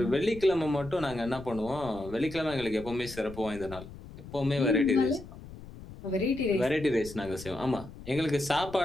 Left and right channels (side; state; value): left; noise; rumble, 15 dB below the sound